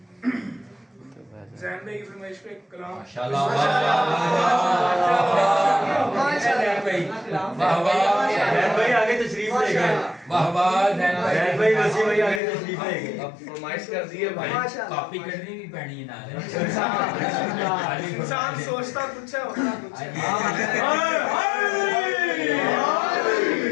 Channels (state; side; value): drops out; right; at 12.4 s